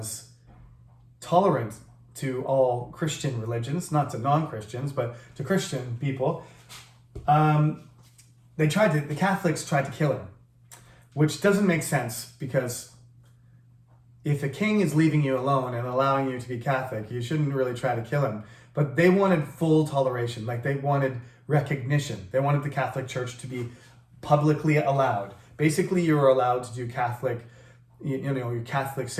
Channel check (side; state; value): both; identical; correlation 1.00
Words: tolerant to all Christian religions, not to non-Christians, but to Christian people, the Catholics tried to kill him, which doesn't make sense, because if a king is leaving you alone and allowing you to be Catholic, you shouldn't really try to kill him. But they wanted full toleration, like they wanted recognition. They wanted the Catholic Church to be publicly allowed. Basically, you were allowed to do Catholic, your Catholic